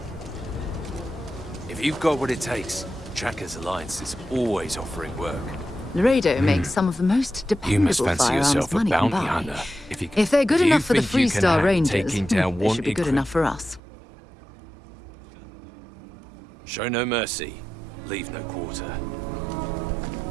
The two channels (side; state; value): left; drops out; at 13.8 s